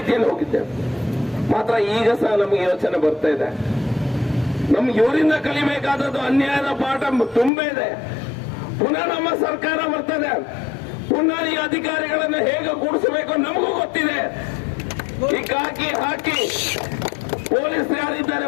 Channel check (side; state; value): right; drops out; at 7.5 s